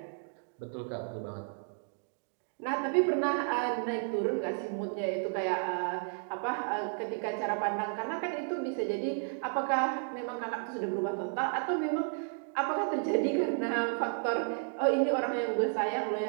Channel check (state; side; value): silent; left; 56 dB below the other